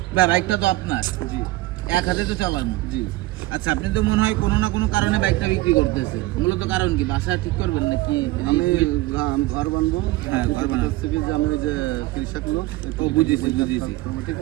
বাইকটা তো আপনার, জি, এক হাতে তো চালানো, জি। আচ্ছা, আপনি তো মনে হয় কোনো না কোনো কারণে বাইকটা বিক্রি করতেছে। মূলত কারণ কি? বাসা ঠিক করবেন নাকি? আমি ঘর বানবো। হ্যাঁ, ঘর বানাবো থেকে যে আমি ওই যে কৃষক লোক, ও বুঝেছি। ঠিক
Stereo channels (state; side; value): quieter; left; 18.9 dB